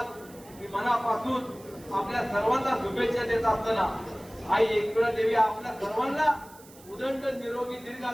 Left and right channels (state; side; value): noise; right; hiss, 23 dB below the sound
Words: मी मनापासून आपल्या सर्वांना शुभेच्छा देत असताना आई एकविरा देवी आपल्या सर्वांना उदंड निरोगी दीर्घ